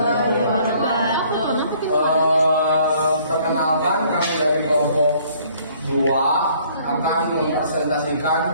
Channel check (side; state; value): both; inverted; correlation -0.60